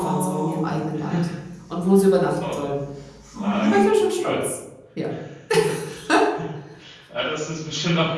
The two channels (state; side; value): identical; both; correlation 1.00